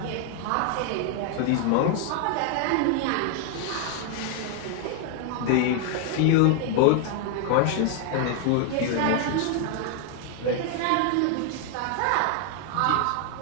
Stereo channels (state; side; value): different; both; correlation 0.00